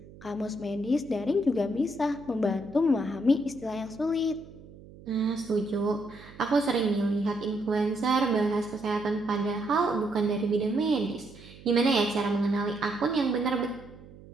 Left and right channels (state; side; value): noise; right; hum, 19 dB below the sound